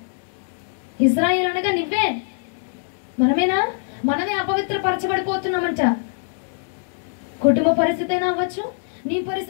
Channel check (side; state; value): right; silent; digital silence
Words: ఇజ్రాయేల్ అనగా నువ్వే, మనమేనా? మనమే అపవిత్ర పరచబడిపోతున్నామంట. కుటుంబ పరిస్థితి అయినా అవ్వచ్చు, నీ